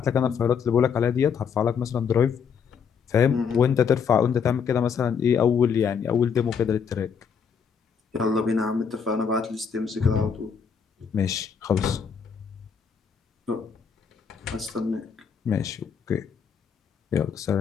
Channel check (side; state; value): right; quieter; 6.7 dB